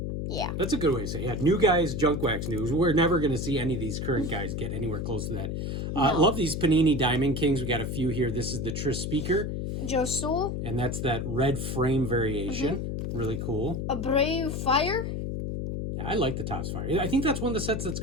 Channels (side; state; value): left; noise; hum, 3 dB below the sound